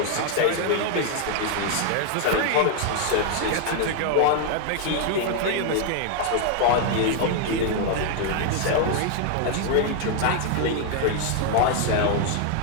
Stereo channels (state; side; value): different; both; correlation 0.00